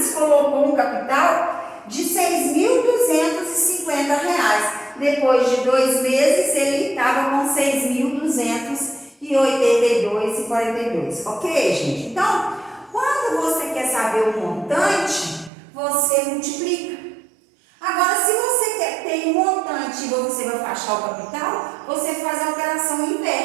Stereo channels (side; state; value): left; drops out; at 15.5 s